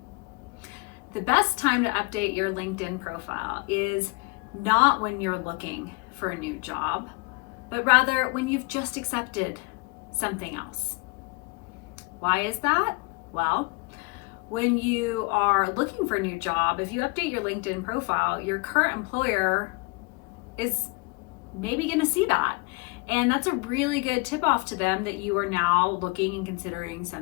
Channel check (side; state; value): right; quieter; 29.4 dB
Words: The best time to update your LinkedIn profile is not when you're looking for a new job, but rather when you've just accepted something else. Why is that? Well, when you are looking for a new job, if you update your LinkedIn profile, your current employer is maybe going to see that. And that's a really good tip off to them that you are now looking and considering